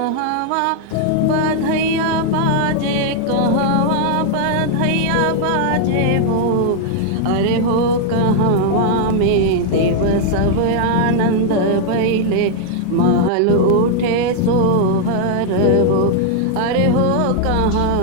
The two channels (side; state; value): both; different; correlation 0.00